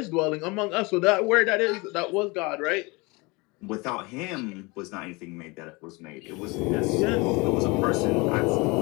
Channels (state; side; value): quieter; right; 25.9 dB